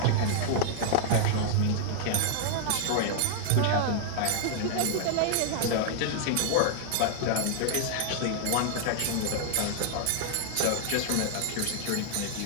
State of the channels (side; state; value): both; different; correlation -0.01